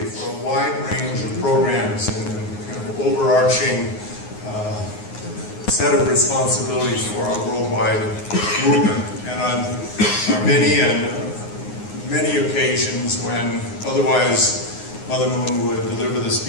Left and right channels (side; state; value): right; late; 9.6 ms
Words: for a wide range of programs and kind of overarching set of responsibilities for our worldwide movement. And on many occasions when otherwise Mother Moon would deliver the